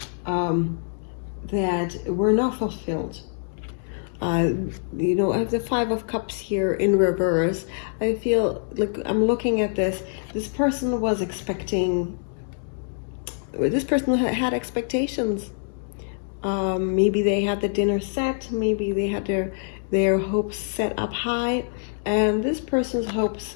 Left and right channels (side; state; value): right; silent; digital silence